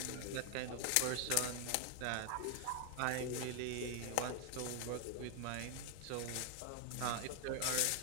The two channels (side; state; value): both; different; correlation 0.00